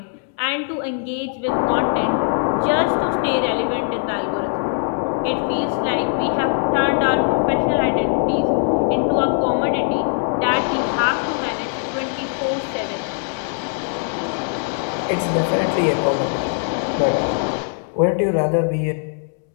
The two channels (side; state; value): right; silent; 64 dB below the other